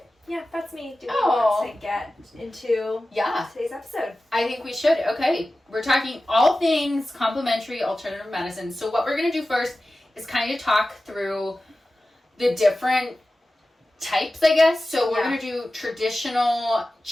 Yeah, that's me. Do we Oh. want to get into yeah, today's episode? I think we should. Okay, we're talking all things complementary alternative medicine. So what we're going to do first is kind of talk through the different types, I guess. So we're Yeah. going to do traditional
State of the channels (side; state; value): both; normal; correlation 0.95